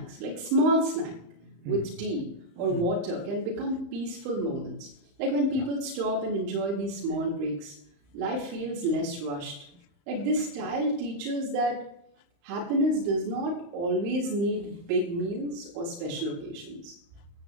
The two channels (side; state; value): left; late; 35 ms